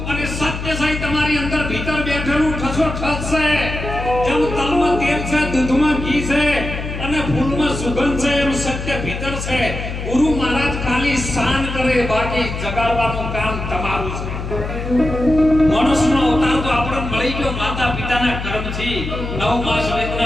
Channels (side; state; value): left; noise; hum, 6 dB below the sound